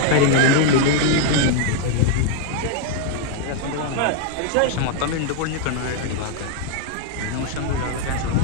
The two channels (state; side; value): different; both; correlation 0.01